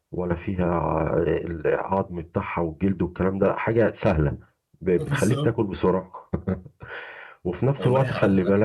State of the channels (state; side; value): identical; both; correlation 1.00